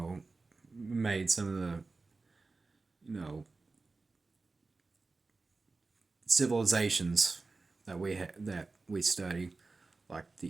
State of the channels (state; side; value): quieter; left; 3.8 dB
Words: made some of the civilizations that we study, like the